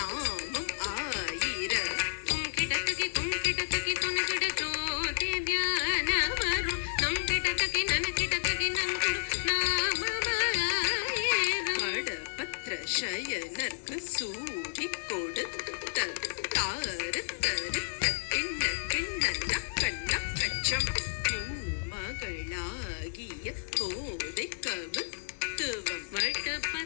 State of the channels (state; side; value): silent; right; digital silence